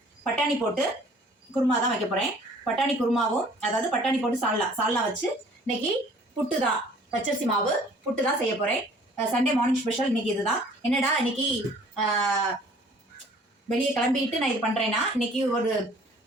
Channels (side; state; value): both; normal; correlation 0.53